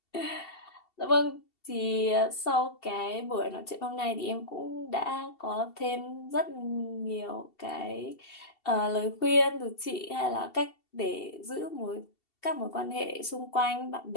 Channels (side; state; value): right; late; 2.7 ms